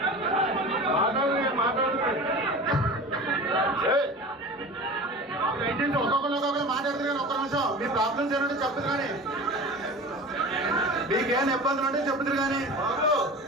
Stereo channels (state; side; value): normal; both; correlation 0.35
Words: ఏంటంటే ఒక్కొక్కరు మాట్లాడుతున్నారు. ఒక్క నిమిషం మీ ప్రాబ్లమ్స్ ఏంటంటే చెప్తారు కానీ మీకేమైనా ఇబ్బందులు ఉంటే చెప్తారు కానీ బాబు